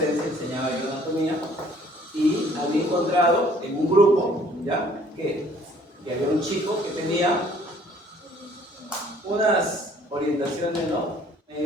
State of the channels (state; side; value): normal; both; correlation 0.58